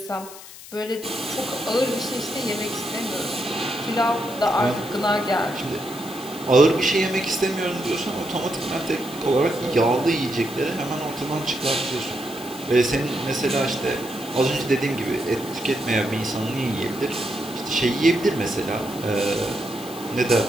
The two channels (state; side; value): noise; left; hiss, 16 dB below the sound